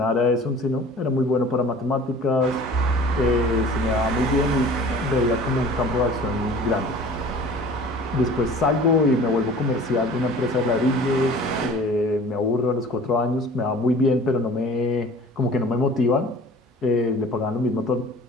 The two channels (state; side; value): normal; both; correlation 0.45